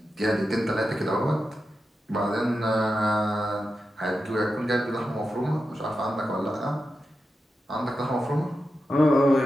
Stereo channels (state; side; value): normal; both; correlation 0.90